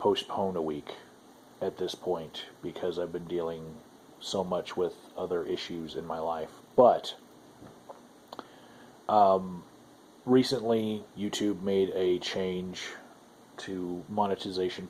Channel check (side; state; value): both; identical; correlation 1.00